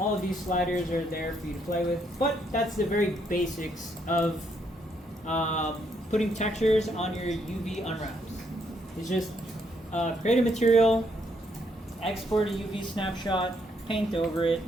of these sliders are there for you to play with, but that's the very basics of putting textures on your UV unwraps. It's just create a material, export a UV snapshot, paint over it,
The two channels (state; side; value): normal; both; correlation 0.73